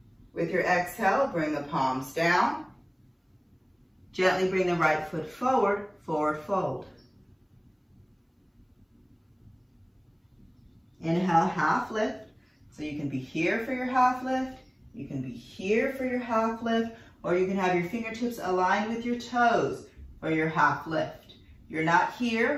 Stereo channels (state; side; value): identical; both; correlation 1.00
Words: With your exhale, bring the palms down. Gently bring the right foot forward, forward fold. Inhale, half lift. So you can be here for your half lift, you can be here for your half lift, or you can have your fingertips aligned with your toes for your half lift. You're not